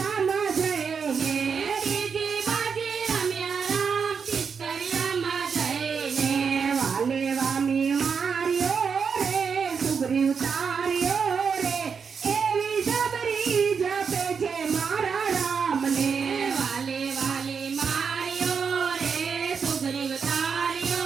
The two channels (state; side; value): quieter; left; 6.1 dB